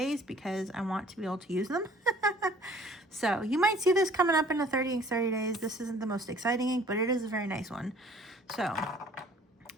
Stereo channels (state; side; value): normal; both; correlation 0.54